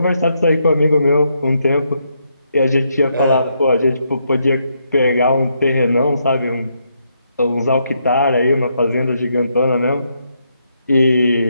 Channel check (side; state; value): both; inverted; correlation -0.78